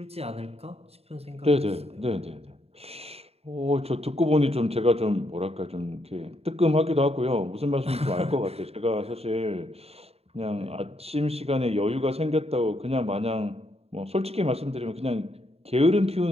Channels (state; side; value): late; left; 0.29 ms